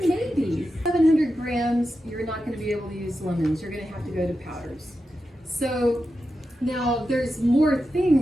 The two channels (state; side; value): normal; both; correlation 0.90